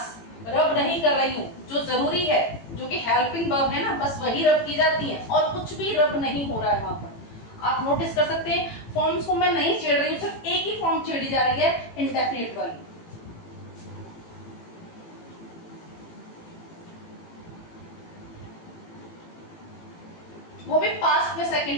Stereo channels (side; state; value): right; late; 18 ms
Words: रब नहीं कर रही हूँ, जो जरूरी है, जो कि हेल्पिंग वर्ब है ना, बस वही रब की जाती है और कुछ भी रब नहीं हो रहा है वहां पर। आप नोटिस कर सकते हैं फॉर्म्स को मैं नहीं छेड़ रही हूँ, सिर्फ एक ही फॉर्म छेड़ी जा रही है, इंडेफिनिट वाली। वो भी पास्ट में